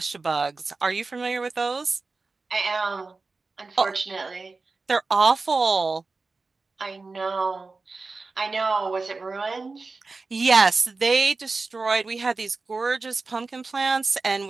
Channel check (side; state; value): left; quieter; 3.9 dB